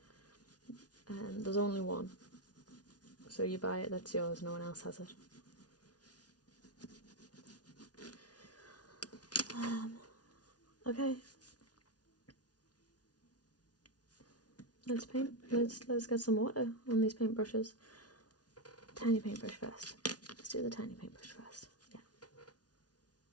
there's only one. So you buy it, that's yours, no one else has it. Okay. Let's paint. Let's get some water on these paintbrushes. Tiny paintbrush first. Let's do the tiny paintbrush first. Yeah.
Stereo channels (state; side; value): late; right; 0.69 ms